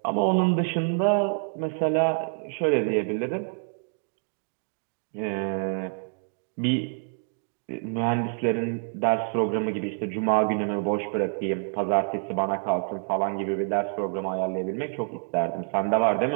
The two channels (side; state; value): left; silent; 60 dB below the other